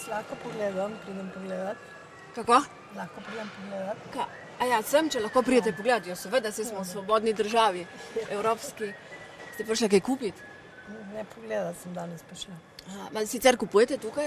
Lahko pogledam, pridem pogledat. Kako? Lahko pridem pogledat. Ja, sem, če lahko pridete pogledat. Jo, seveda, se smo v svobodni državi, evropski. Ste prišla kaj kupiti? Ne, pogledat sem danes prišla. Sicer kupujete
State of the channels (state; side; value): identical; both; correlation 1.00